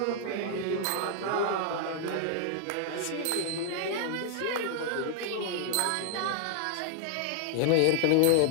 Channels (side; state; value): both; different; correlation 0.00